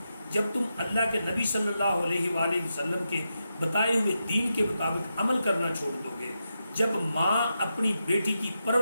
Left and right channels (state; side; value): inverted; both; correlation -0.87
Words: جب تم اللہ کے نبی صلی اللہ علیہ وآلہ وسلم کے بتائے ہوئے دین کے مطابق عمل کرنا چھوڑ دو گے، جب ماں اپنی بیٹی کی